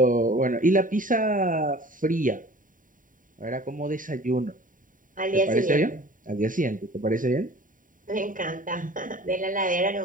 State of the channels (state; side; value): late; left; 0.39 ms